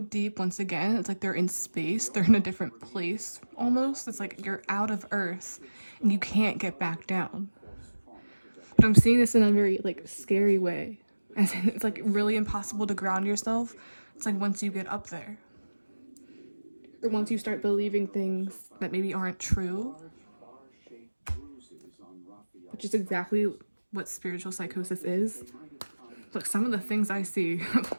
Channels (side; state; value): both; inverted; correlation -1.00